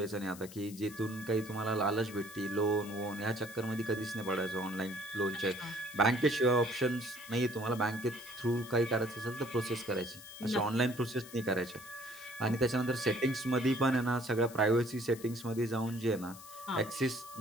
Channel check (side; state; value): left; noise; hiss, 17 dB below the sound